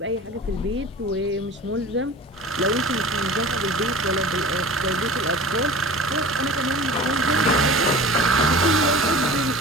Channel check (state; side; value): normal; both; correlation 0.39